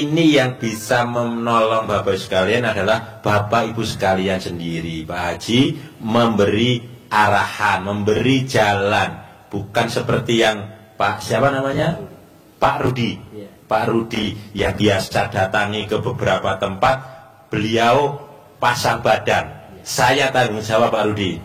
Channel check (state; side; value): identical; both; correlation 1.00